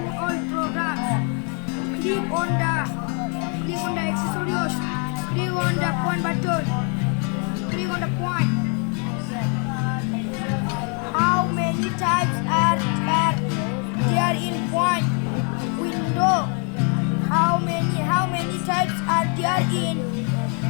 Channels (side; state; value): right; quieter; 38.7 dB